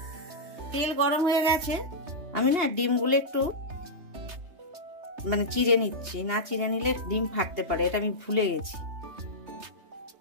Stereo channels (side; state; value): left; late; 2.8 ms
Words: তেল গরম হয়ে গেছে, আমি না ডিমগুলো একটু চিড়ে নিচ্ছি। না চিড়ে নিলে ডিম ফাটতে পারে, এটা আমি ভুলে গেছি।